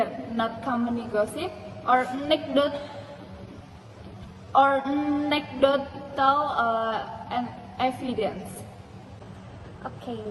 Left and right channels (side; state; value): both; identical; correlation 1.00